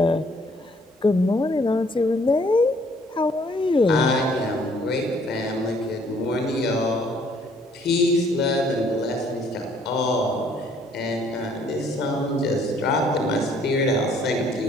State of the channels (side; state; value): both; normal; correlation 0.62